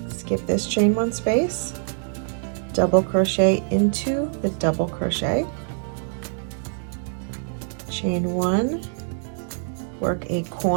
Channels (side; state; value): left; silent; digital silence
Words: skip this chain 1 space, double crochet into the double crochet, chain 1, work a